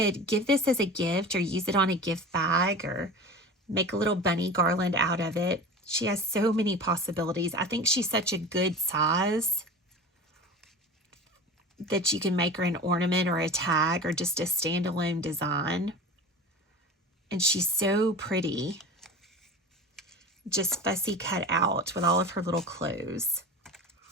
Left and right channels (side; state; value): both; normal; correlation 0.33